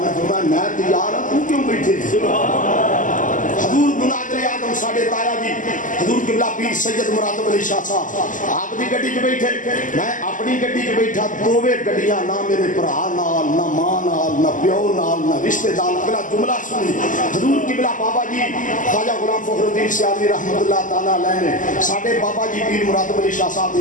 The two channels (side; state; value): right; late; 0.38 ms